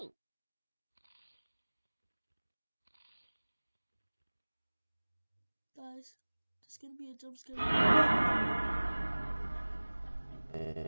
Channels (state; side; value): inverted; both; correlation -1.00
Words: guys, there's gonna be a jump scare.